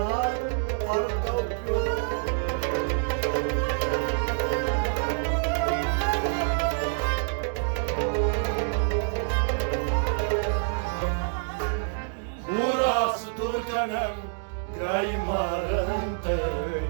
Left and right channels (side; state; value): left; silent; digital silence